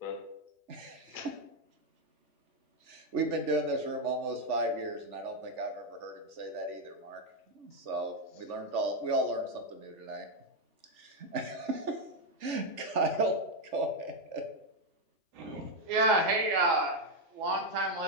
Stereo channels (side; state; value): left; late; 3.4 ms